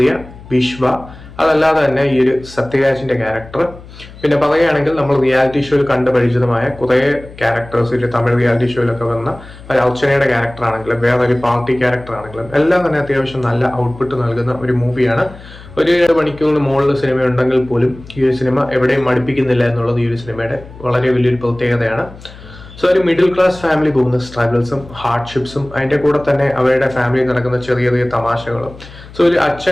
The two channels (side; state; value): left; noise; hum, 18 dB below the sound